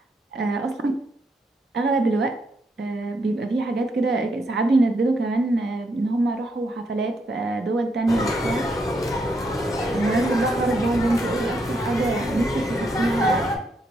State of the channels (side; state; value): both; normal; correlation 0.77